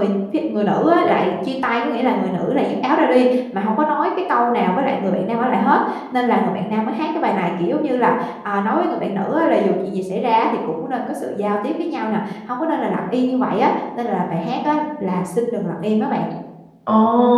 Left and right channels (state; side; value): identical; both; correlation 1.00